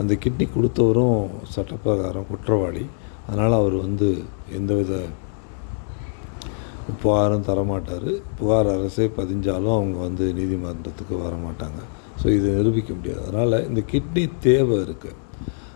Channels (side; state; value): right; silent; digital silence